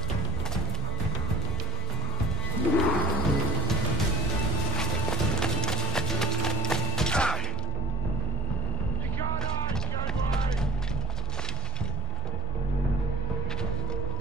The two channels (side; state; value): both; normal; correlation 0.48